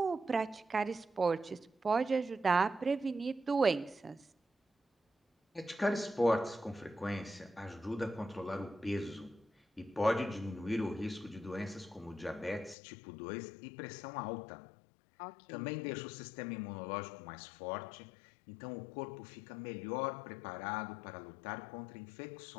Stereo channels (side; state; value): right; drops out; at 12.8 s